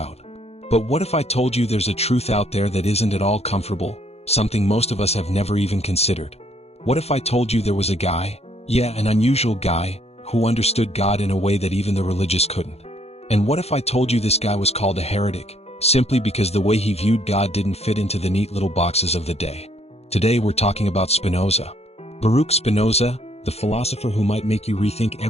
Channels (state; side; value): late; right; 0.30 ms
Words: But what if I told you there's a truth out there that isn't at all comfortable, something most of us have never even considered? What if I told you there was a guy, an unusual guy, who understood God in a way that even the religious couldn't? And what if I told you this guy was called a heretic, simply because the way he viewed God didn't fit into the neat little boxes of the day? Today we're talking about Spinoza. Baruch Spinoza, the philosopher who might make you rethink